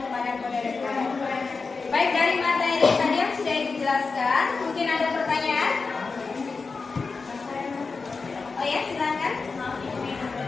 qadar dan qadar. Baik, dari materi tadi yang sudah dijelaskan, mungkin ada pertanyaan? Oh ya, silakan.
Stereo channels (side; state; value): right; quieter; 4.4 dB